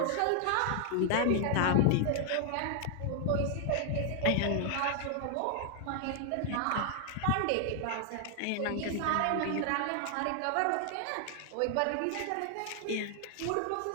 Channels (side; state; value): both; different; correlation 0.00